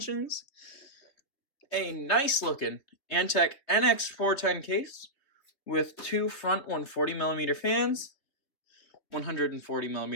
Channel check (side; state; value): right; late; 3.3 ms